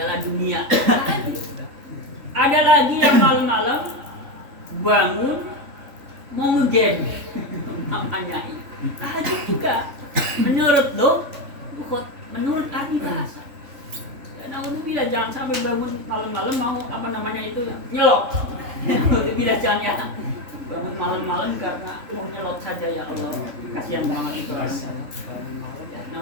Dunia. Ada lagi yang malam-malam bangun mau ngegame. Namanya ini tahajud juga. Menurut lughat, menurut arti bahasa. Naudzubillah, jangan sampai bangun malam-malam mau nyelok. Naudzubillah, jangan ya. Bangun malam-malam karena mau nyelok saja, ya Allah. Kasihan banget itu. Ya,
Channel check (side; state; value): left; late; 3.5 ms